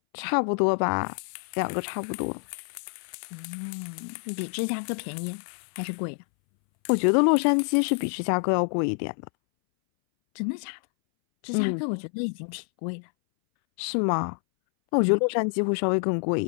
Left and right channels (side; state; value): right; silent; 60 dB below the other